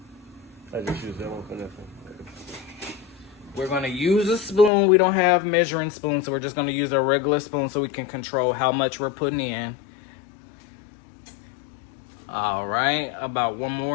I just use that one for nothing. We're going to use a spoon. We don't have measuring spoons, so we're just going to use a regular spoon so we can control how much we're putting in. All right, about one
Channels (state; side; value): drops out; right; at 4.7 s